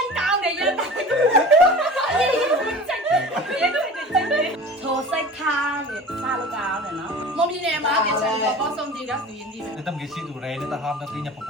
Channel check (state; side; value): normal; both; correlation 0.38